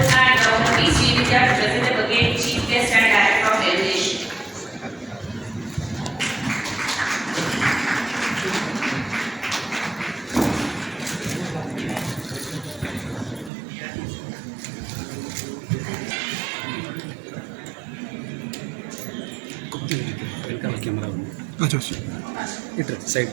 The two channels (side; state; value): left; drops out; at 13.5 s